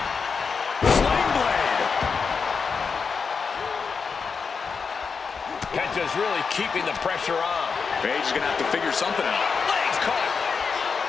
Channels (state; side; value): quieter; right; 5.5 dB